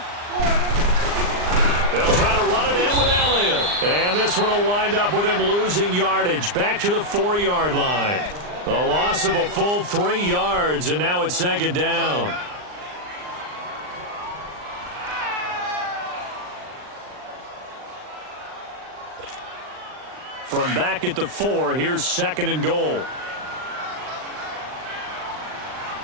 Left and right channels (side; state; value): left; late; 39 ms